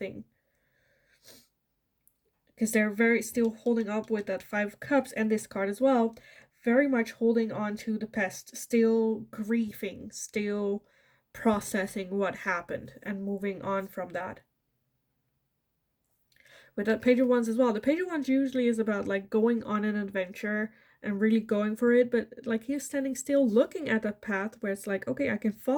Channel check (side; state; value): both; identical; correlation 1.00